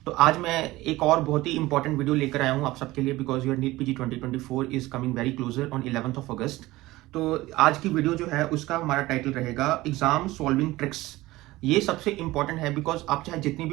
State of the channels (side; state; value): left; quieter; 18.5 dB